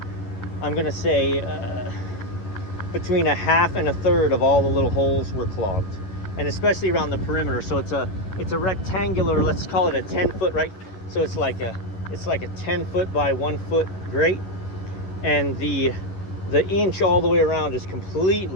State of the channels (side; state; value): right; late; 11 ms